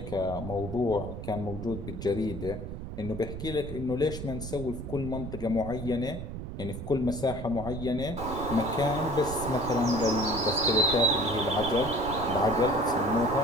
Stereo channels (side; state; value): right; noise; rumble, 7 dB below the sound